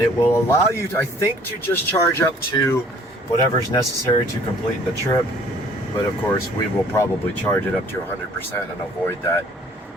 it will allow you to, I think, to just charge up to whatever's necessary to complete the trip. But of course we will probably charge it up to 100% and avoid that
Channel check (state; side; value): normal; both; correlation 0.55